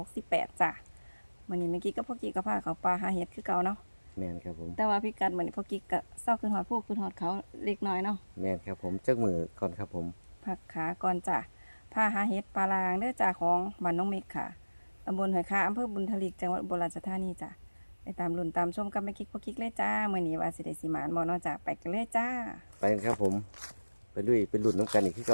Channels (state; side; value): inverted; both; correlation -1.00